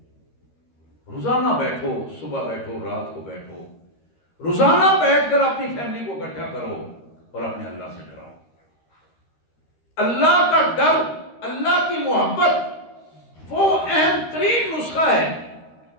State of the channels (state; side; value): late; right; 13 ms